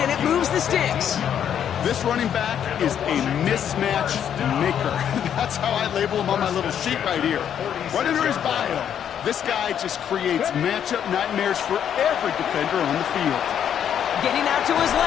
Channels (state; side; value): quieter; right; 9.1 dB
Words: and it moves the sticks. This running back is a mismatch maker. That's how I label him on my little sheet right here. Right under his bio. This guy just creates matchup nightmares for every defender on the field. Getting out to his